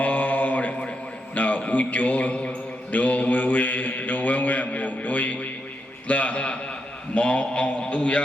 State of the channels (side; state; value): both; normal; correlation 0.82